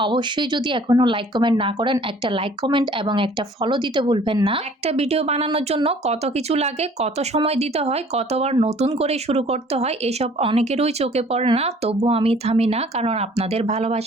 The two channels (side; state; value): both; normal; correlation 0.54